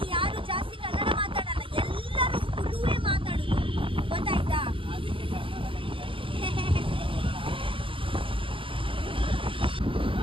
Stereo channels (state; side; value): late; left; 0.25 ms